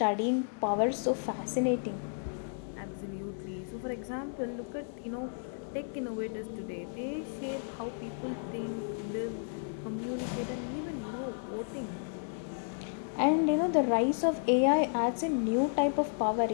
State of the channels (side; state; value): right; silent; 56 dB below the other